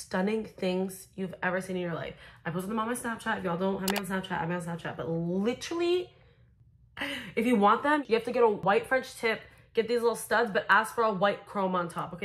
things you've ever seen in your life? I posted them on my Snapchat. If y'all don't have me on Snapchat, I'm on Snapchat. But literally, if you want them, you have to get a white French tip, get these little studs, but ask for a white chrome on top,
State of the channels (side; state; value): both; identical; correlation 1.00